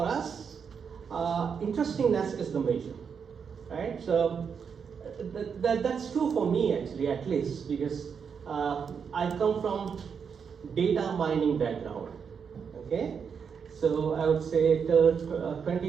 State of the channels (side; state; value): left; quieter; 6.6 dB